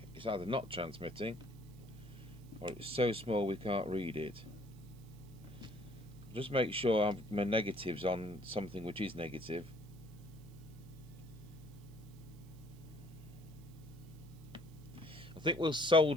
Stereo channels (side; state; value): right; noise; hiss, 27 dB below the sound